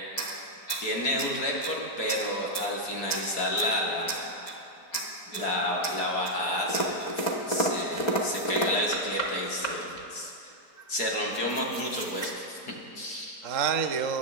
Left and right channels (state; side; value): late; right; 4.3 ms